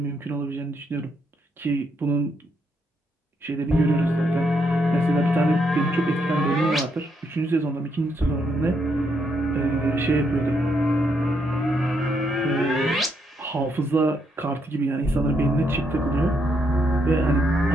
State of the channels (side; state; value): both; normal; correlation 0.76